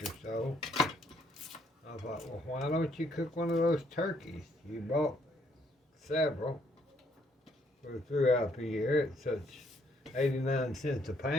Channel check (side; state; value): both; normal; correlation 0.68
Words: or so. I thought, well, why don't you cook one of those turkeys? You bought several throughout the year at such 89 cents a